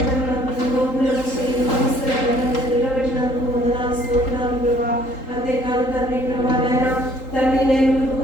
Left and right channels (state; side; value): late; right; 3.8 ms